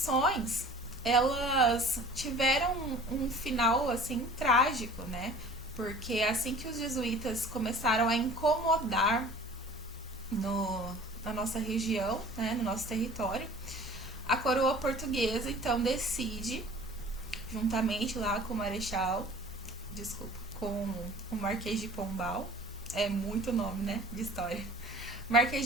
elas tiveram um final assim trágico, né? Porque assim que os jesuítas começaram a incomodar na nossa região, né, no nosso território, a coroa portuguesa então decide, juntamente lá com o Marechal, desculpa, com o Marquês de Pombal, é muito nome, né, de história. Marquês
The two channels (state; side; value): normal; both; correlation 0.46